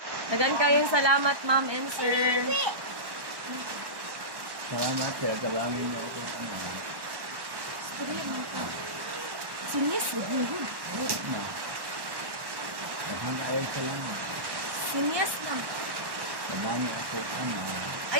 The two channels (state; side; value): late; left; 1.1 ms